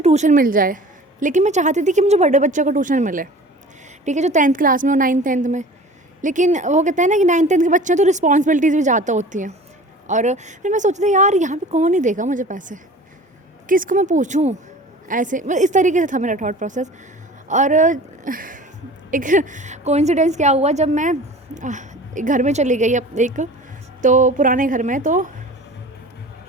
ट्यूशन मिल जाए, लेकिन मैं चाहती थी कि मुझे बड़े बच्चों को ट्यूशन मिले। ठीक है, जो 10th क्लास में हो, 9th 10th में, लेकिन वो कहते हैं ना कि 9th-10th के बच्चे हैं तो रिस्पॉन्सिबिलिटीज़ भी ज़्यादा होती हैं। और फिर मैं सोचती थी यार यहाँ पे कौन ही देगा मुझे पैसे, किसको मैं पूछूँ, ऐसे मतलब इस तरीके से था मेरा थॉट प्रोसेस। और एक कोइंसिडेंस क्या हुआ, जब मैं एक घर में चली गई एक तो पुराने घर में, तो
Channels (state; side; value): normal; both; correlation 0.42